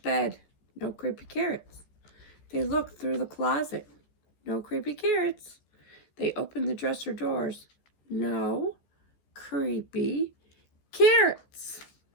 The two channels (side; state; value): right; late; 14 ms